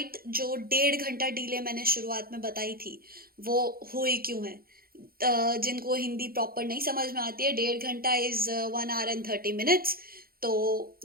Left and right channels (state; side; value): late; left; 0.43 ms